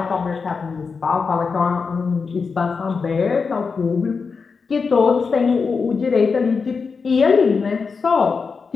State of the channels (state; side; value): quieter; right; 5.1 dB